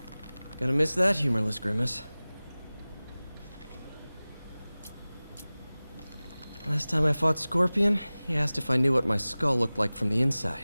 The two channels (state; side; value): inverted; both; correlation -0.98